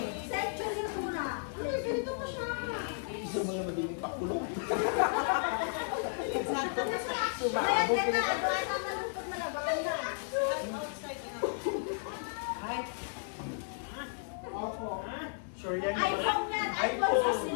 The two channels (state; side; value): silent; right; digital silence